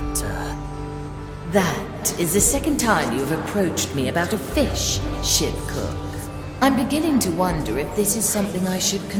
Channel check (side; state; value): both; identical; correlation 1.00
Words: That is the second time you've approached me about a fish, ship cook. I'm beginning to wonder if this is something I should